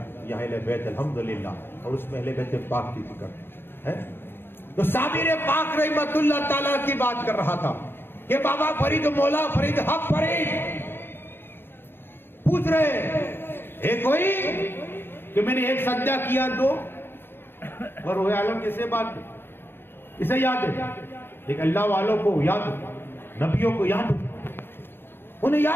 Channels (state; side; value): late; right; 0.10 ms